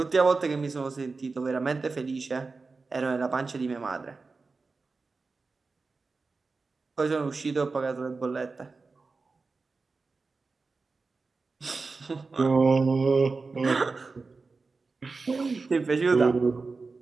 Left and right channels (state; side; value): quieter; left; 4.1 dB